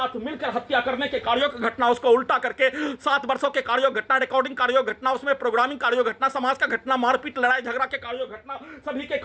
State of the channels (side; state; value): both; identical; correlation 1.00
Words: मिलकर हत्या करने के कार्यों की घटना उसको उल्टा करके 7 वर्षों के कार्यों घटना रिकॉर्डिंग कार्यों घटना उसमें प्रोग्रामिंग कार्यों घटना समाज का घटना मारपीट लड़ाई झगड़ा के कार्यों घटना सभी के